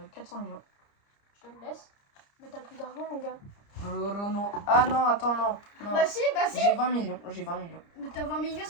400 millions. Je te le laisse. Mais t'as plus d'argent, mon gars. Non. Ah non, attends, non. Bah si. J'ai 20 millions. Mais t'as 20 millions,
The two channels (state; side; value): late; right; 30 ms